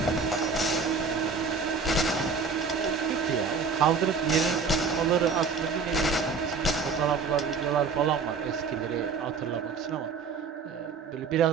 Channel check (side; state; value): left; quieter; 5.1 dB